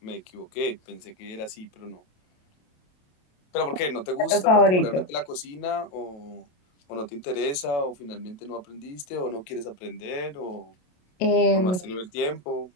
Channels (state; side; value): late; right; 28 ms